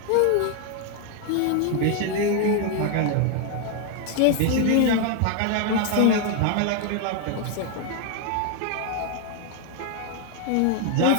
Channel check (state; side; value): different; both; correlation 0.01